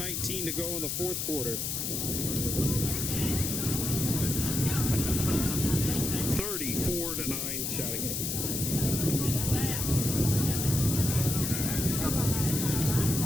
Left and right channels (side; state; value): left; noise; hiss, 2 dB below the sound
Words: to go in the fourth quarter. 34-9 Chateauguay.